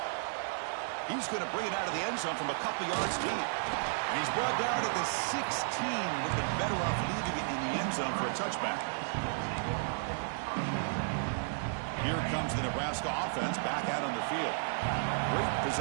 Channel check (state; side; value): silent; left; 56 dB below the other